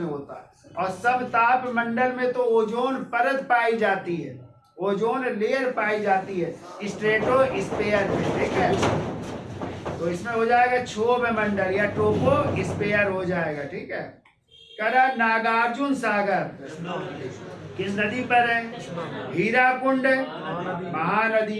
होता है। और सब ताप मंडल में तो ओजोन परत पाई जाती है, ओजोन लेयर पाई जाती है स्ट्रेटोस्फीयर में, ठीक है। तो इसमें हो जाएगा क्षोभ मंडल या ट्रोपोस्फियर हो जाएगा, ठीक है। करा नागार्जुन सागर किस नदी पर है? हीराकुंड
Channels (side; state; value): both; identical; correlation 1.00